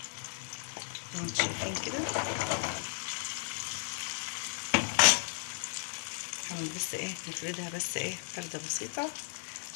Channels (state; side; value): silent; right; 55 dB below the other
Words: زي ما انتم شايفين كده. بس ايه نفردها بس ايه فردة بسيطة